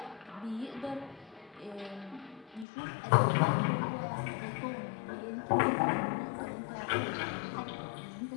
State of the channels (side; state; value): right; drops out; at 2.7 s